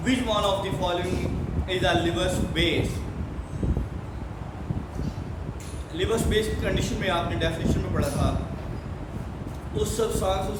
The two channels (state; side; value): identical; both; correlation 1.00